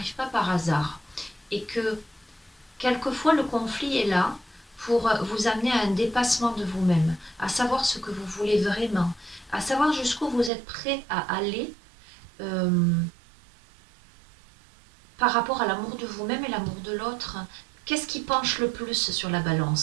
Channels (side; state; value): left; drops out; at 10.5 s